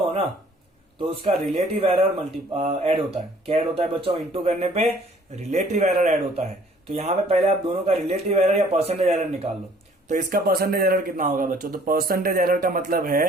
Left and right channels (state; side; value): normal; both; correlation 0.57